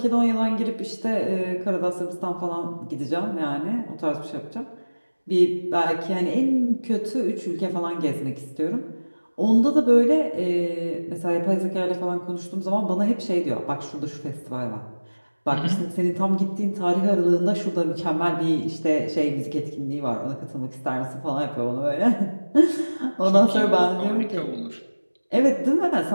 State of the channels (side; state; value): both; inverted; correlation -1.00